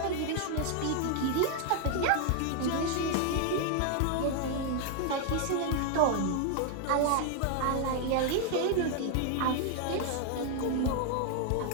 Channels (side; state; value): both; different; correlation 0.00